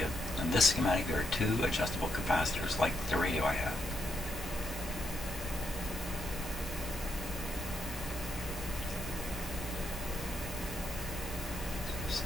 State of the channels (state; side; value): normal; both; correlation 0.81